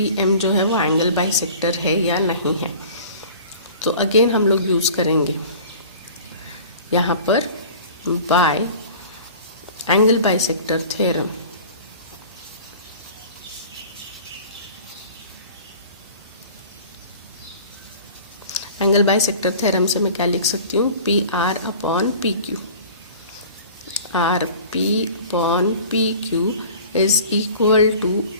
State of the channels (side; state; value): both; inverted; correlation -0.43